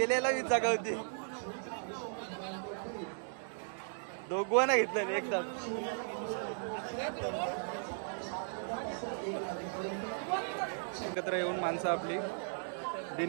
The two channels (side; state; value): left; silent; digital silence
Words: हीच जागा होती. दोघांना घेतलं एकदा. एकत्र येऊन माणसं आपली.